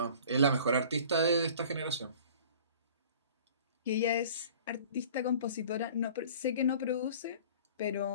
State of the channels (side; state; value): both; inverted; correlation -0.46